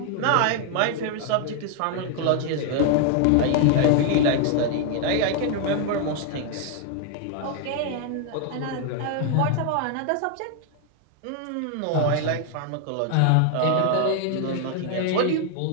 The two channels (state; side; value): different; both; correlation 0.00